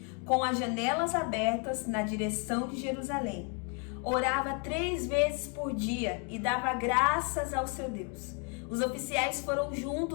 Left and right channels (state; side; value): quieter; right; 38.2 dB